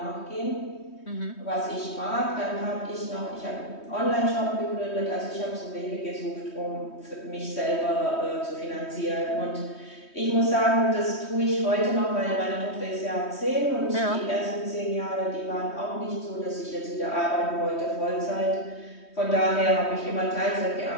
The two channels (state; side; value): late; right; 3.2 ms